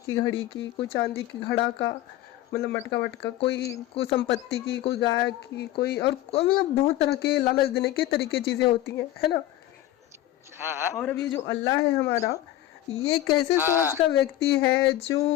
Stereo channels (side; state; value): right; quieter; 14.0 dB